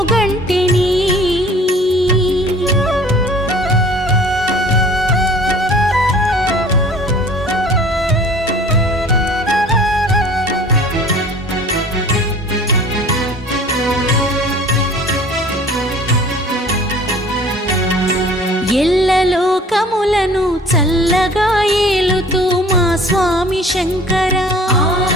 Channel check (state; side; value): normal; both; correlation 0.48